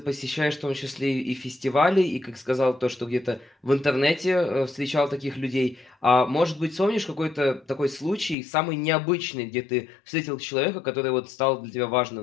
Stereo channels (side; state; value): right; drops out; at 8.3 s